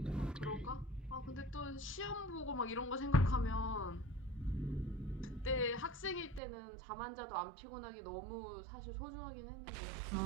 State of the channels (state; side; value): drops out; left; at 6.4 s